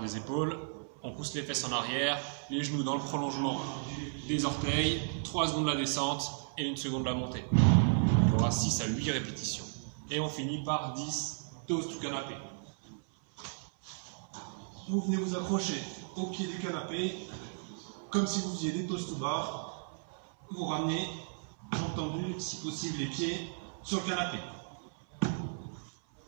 épaules. On pousse les fesses en arrière, les genoux dans le prolongement des orteils, 3 secondes la descente et 1 seconde la montée. Il y aura 6 à 8 répétitions. Et on finit par 10 toasts to canapé. Vous venez vous accrocher au pied du canapé comme si vous faisiez des toast to bar, vous ramenez, jambes tendues, si possible les pieds sur le canapé.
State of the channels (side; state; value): left; silent; 55 dB below the other